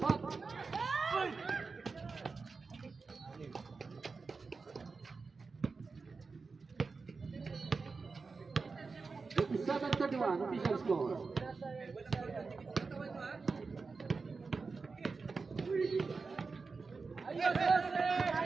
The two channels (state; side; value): quieter; left; 4.4 dB